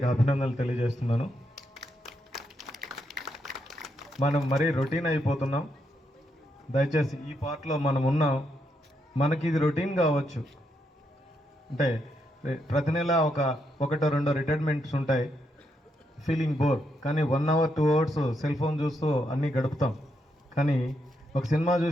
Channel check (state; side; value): normal; both; correlation 0.80